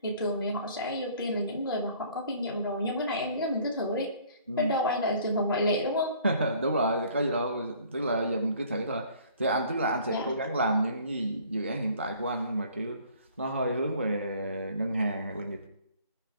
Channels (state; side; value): inverted; both; correlation -0.55